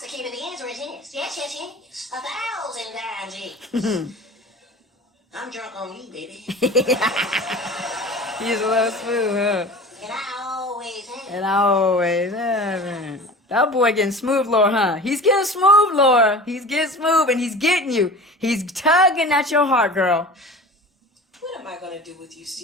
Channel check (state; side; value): normal; both; correlation 0.38